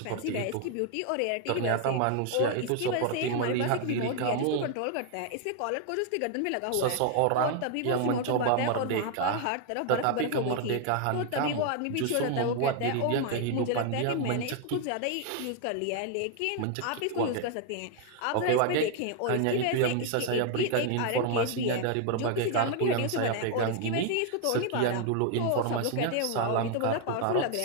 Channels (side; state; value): both; different; correlation 0.00